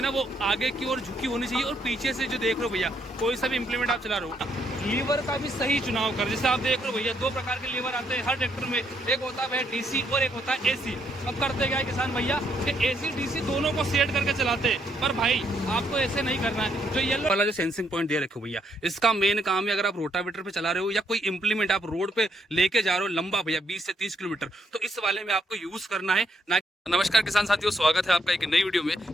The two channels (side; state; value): both; normal; correlation 0.74